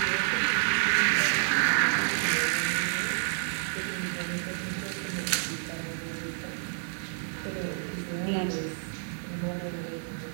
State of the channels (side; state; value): left; silent; digital silence